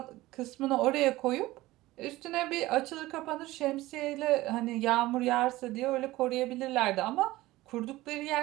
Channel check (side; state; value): left; quieter; 18.0 dB